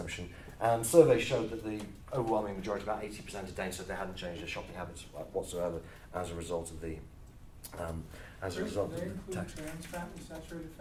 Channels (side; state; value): both; identical; correlation 1.00